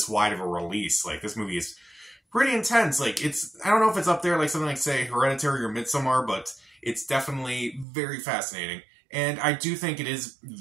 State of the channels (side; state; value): left; drops out; at 7.9 s